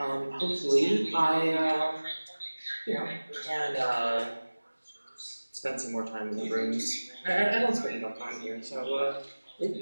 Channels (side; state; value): both; inverted; correlation -1.00